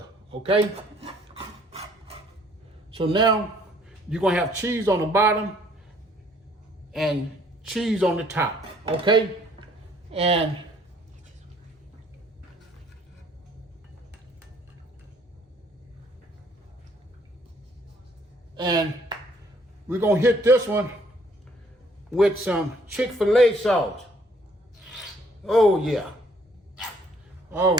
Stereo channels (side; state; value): both; normal; correlation 0.62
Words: okay? So now you're gonna have cheese on the bottom and cheese on the top, okay? And we're gonna hit this one with some Chick-fil-A sauce. Oh yeah. All